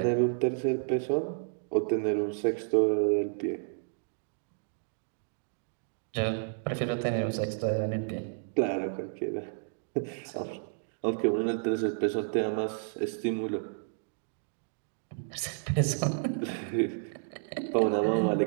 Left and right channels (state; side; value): silent; left; digital silence